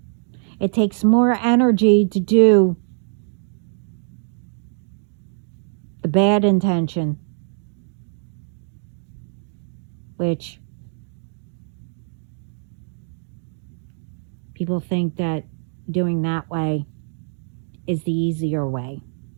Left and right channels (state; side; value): silent; left; digital silence